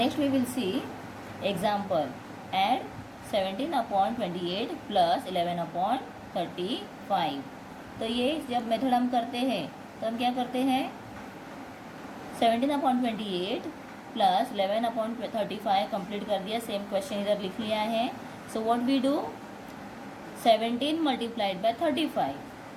we will see example, add 17/28 plus 11/35। तो ये जब मेथड हम करते हैं तो हम क्या करते हैं, 17/28 प्लस 11/35 कंप्लीट कर दिया, सेम क्वेश्चन इधर लिख लिया है। So what we do, 17 multiplied by 35,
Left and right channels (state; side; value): identical; both; correlation 1.00